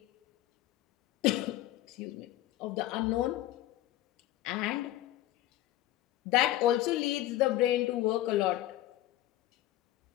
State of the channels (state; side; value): quieter; right; 14.5 dB